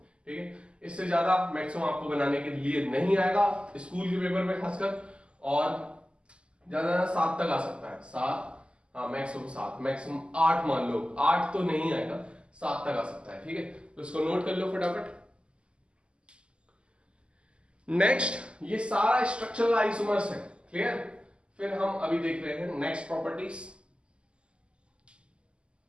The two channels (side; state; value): left; late; 0.052 ms